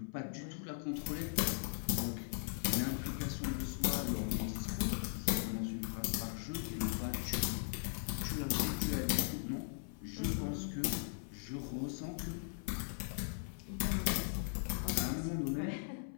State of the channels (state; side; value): silent; right; 52 dB below the other